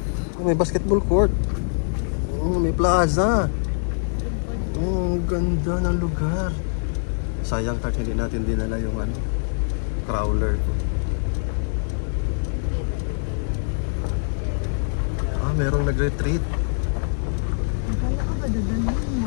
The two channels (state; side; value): silent; right; digital silence